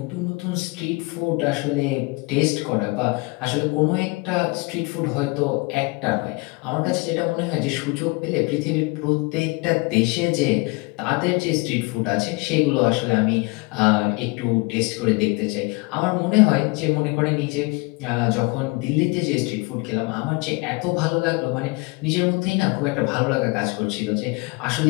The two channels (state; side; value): quieter; right; 27.4 dB